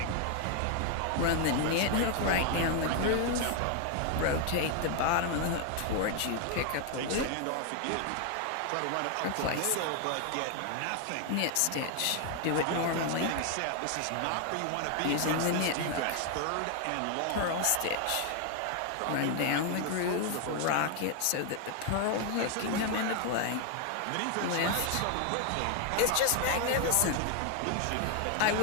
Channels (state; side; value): different; both; correlation 0.00